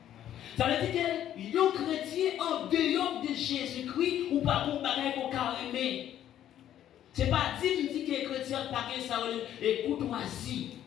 Ça veut dire que les chrétiens en dehors de Jésus-Christ ou pas pour bagay pour carrément. C'est pas dit que les chrétiens pas ça et courtoisie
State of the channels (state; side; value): quieter; right; 11.3 dB